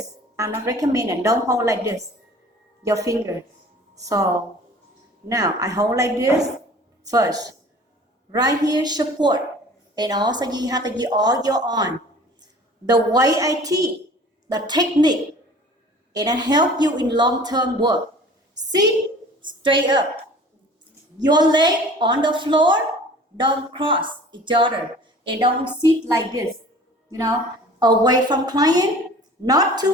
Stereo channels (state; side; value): normal; both; correlation 0.46